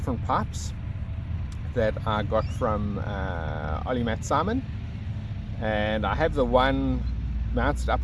pipes that I got from Olimat Simon, and I have the one mounted up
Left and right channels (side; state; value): both; identical; correlation 1.00